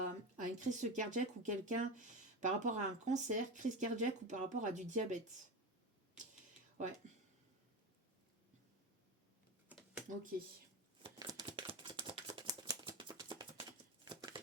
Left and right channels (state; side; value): normal; both; correlation 0.22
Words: une crise cardiaque ou quelqu'un par rapport à un cancer, crise cardiaque ou par rapport à du diabète. Ouais. Ok.